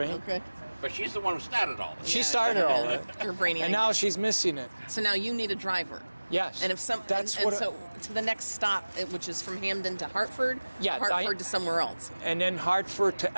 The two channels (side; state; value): both; inverted; correlation -1.00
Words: Okay. But she's the one who started all this. She started all that. You're brainy. And now she's missing it. So now you need a driver. Yes. And if so to the next stop, which is from Hamden to Hartford, Hartford to somewhere else. And then Hartford to